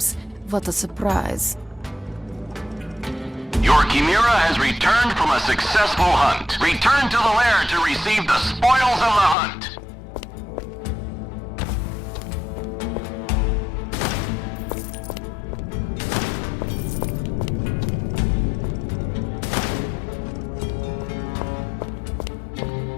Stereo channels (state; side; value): drops out; right; at 9.3 s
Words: What a surprise. Your Chimera has returned from a successful hunt. Return to the lair to receive the spoils of the hunt.